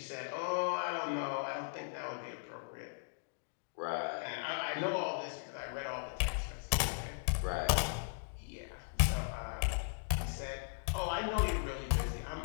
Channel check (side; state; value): right; silent; digital silence